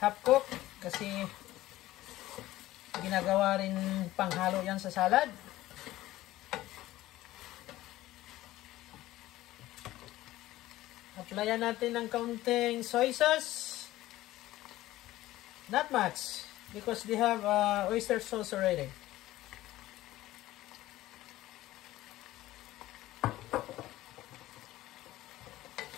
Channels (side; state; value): right; quieter; 16.0 dB